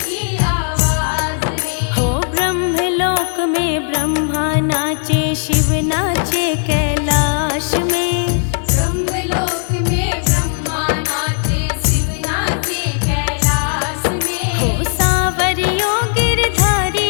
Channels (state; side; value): silent; right; 68 dB below the other